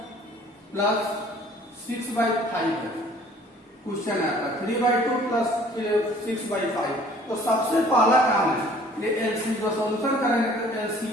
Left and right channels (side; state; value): both; normal; correlation 0.53